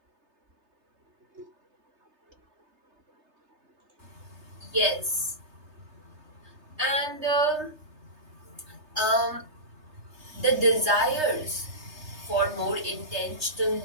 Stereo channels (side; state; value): left; late; 3.3 ms